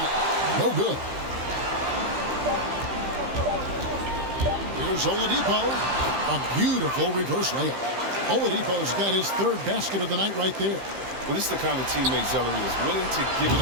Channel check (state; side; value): late; left; 15 ms